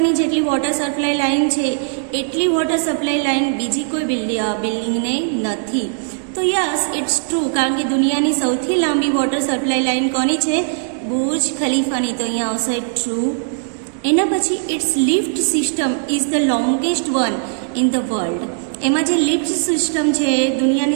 જેટલી વોટર સપ્લાય લાઇન છે એટલી વોટર સપ્લાય લાઇન બીજી કોઈ બિલ્ડિંગને નથી. તો યસ, ઇટ્સ ટ્રુ, કારણ કે દુનિયાની સૌથી લાંબી વોટર સપ્લાય લાઇન કોની છે? બુર્જ ખલીફાની. તો અહીંયા આવશે ટ્રુ. એના પછી its lift system is the longest one in the world. એમાં જે લિફ્ટ સિસ્ટમ છે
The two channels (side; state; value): left; silent; digital silence